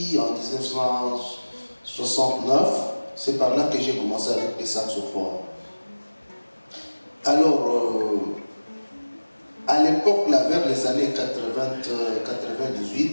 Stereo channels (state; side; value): inverted; both; correlation -1.00